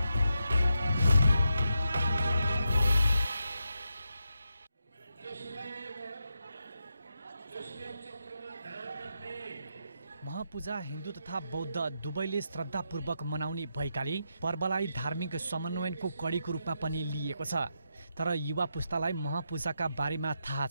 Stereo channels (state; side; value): inverted; both; correlation -0.85